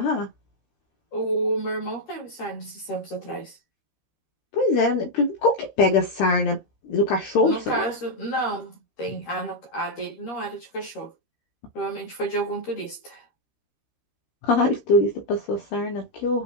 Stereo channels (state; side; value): late; right; 13 ms